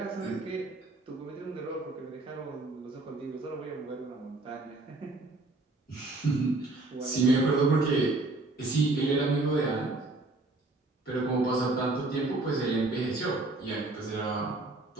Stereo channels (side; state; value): left; quieter; 3.0 dB